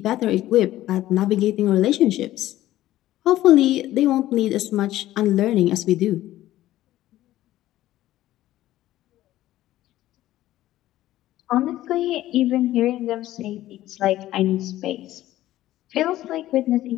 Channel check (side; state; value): right; quieter; 14.7 dB